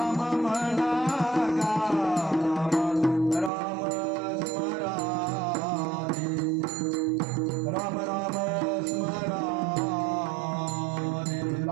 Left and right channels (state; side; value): drops out; left; at 3.5 s